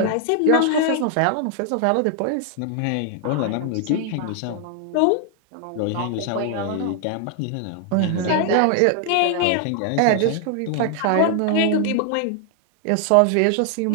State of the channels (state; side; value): different; both; correlation 0.00